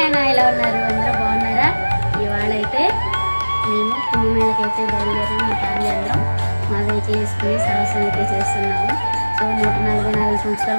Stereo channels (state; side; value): inverted; both; correlation -1.00